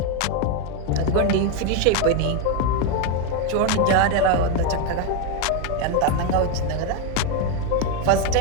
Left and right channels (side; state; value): both; different; correlation 0.02